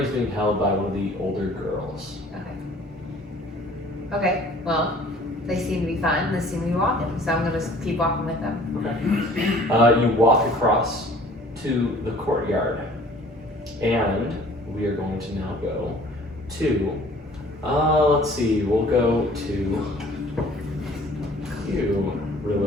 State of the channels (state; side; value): normal; both; correlation 0.52